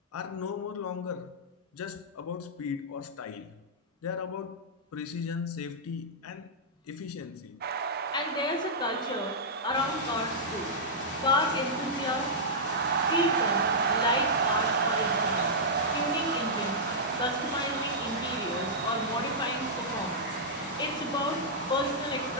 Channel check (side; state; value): both; normal; correlation -0.11